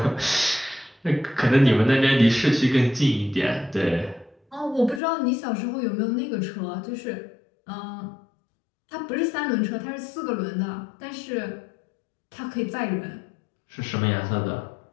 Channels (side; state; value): right; drops out; at 5.0 s